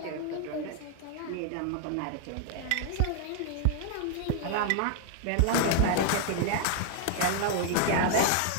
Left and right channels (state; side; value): different; both; correlation 0.00